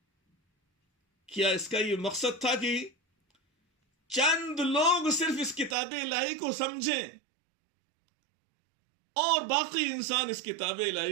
کیا اس کا یہ مقصد تھا کہ چند لوگ صرف اس کتاب الہی کو سمجھیں اور باقی انسان اس کتاب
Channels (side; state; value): left; drops out; at 5.8 s